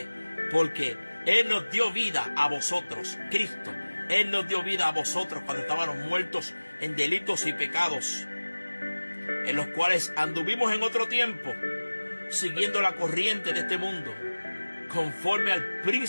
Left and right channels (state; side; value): inverted; both; correlation -1.00